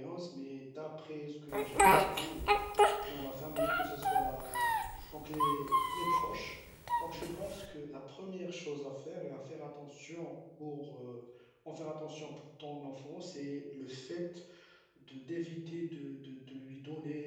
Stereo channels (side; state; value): both; identical; correlation 1.00